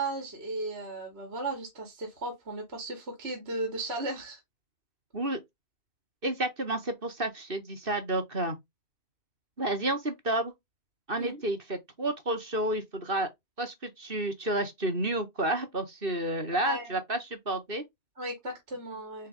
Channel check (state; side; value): late; left; 2.6 ms